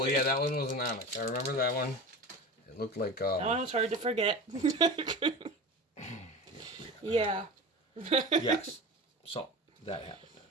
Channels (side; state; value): both; normal; correlation 0.31